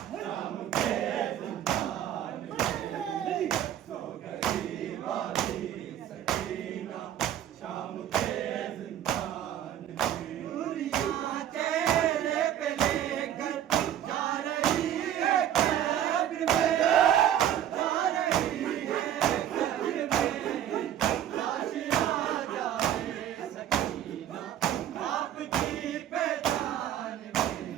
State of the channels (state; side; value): quieter; left; 10.9 dB